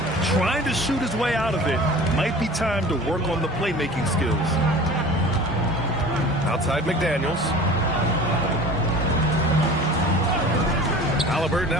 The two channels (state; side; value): normal; both; correlation 0.41